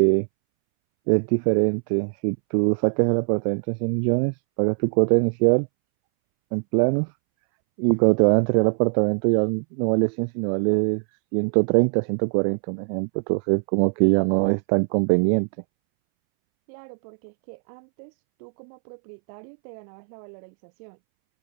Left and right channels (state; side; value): silent; left; 64 dB below the other